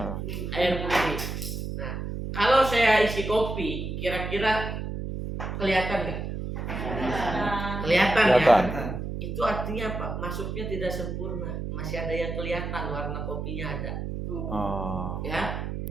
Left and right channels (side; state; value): right; noise; hum, 5 dB below the sound